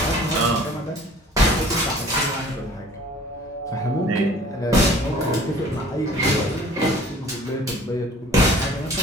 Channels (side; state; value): both; normal; correlation 0.50